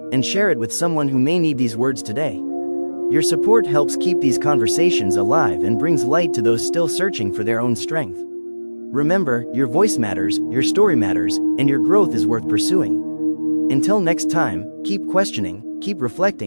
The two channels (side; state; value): both; inverted; correlation -1.00